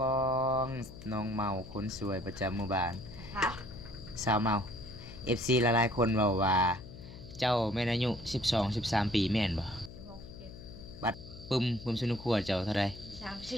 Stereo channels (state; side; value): noise; left; hum, 15 dB below the sound